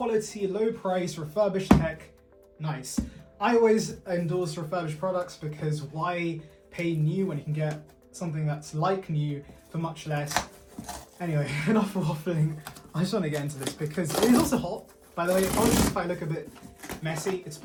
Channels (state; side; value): identical; both; correlation 1.00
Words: low price, refurbished tech, nice. I always endorse refurbished products because why pay new when you can get something that's like new for much less? Anyway, enough waffling. I just want to get into this because it is also hot. By the way, apologies if I look a bit messy. It's